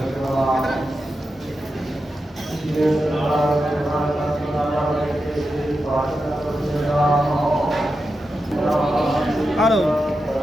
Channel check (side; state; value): both; normal; correlation 0.89